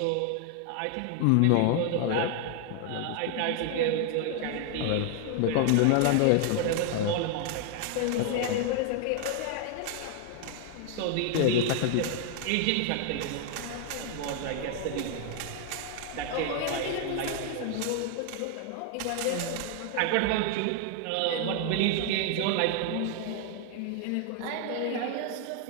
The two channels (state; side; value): different; both; correlation 0.00